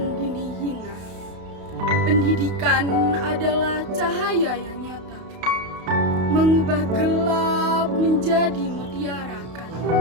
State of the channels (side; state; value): left; late; 32 ms